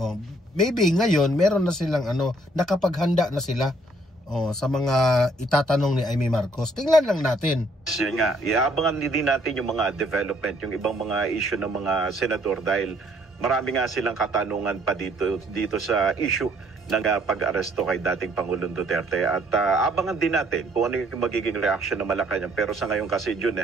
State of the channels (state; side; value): normal; both; correlation 0.64